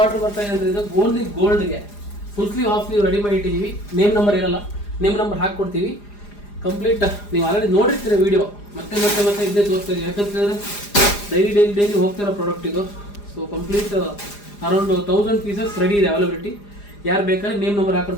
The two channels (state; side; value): late; right; 4.9 ms